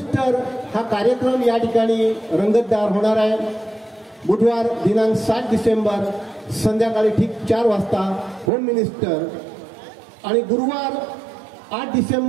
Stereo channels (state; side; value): drops out; left; at 8.5 s